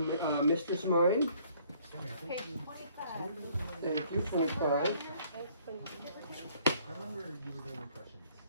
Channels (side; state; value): both; inverted; correlation -0.61